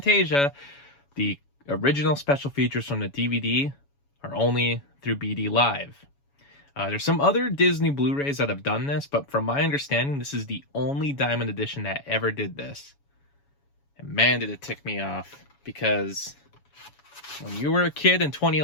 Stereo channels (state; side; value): late; right; 7.1 ms